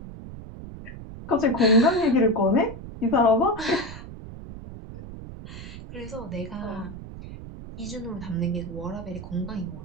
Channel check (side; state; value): right; noise; rumble, 12 dB below the sound